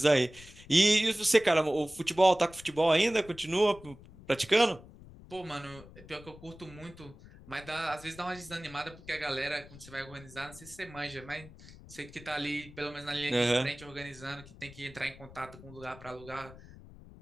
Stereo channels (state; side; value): noise; left; rumble, 19 dB below the sound